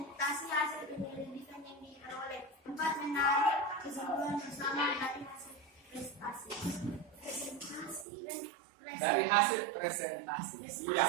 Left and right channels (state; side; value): drops out; left; at 8.1 s